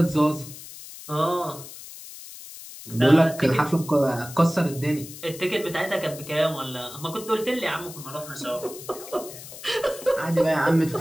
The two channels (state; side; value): noise; left; hiss, 14 dB below the sound